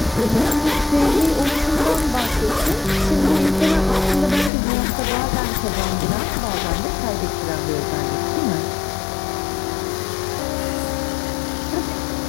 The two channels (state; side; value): drops out; right; at 4.5 s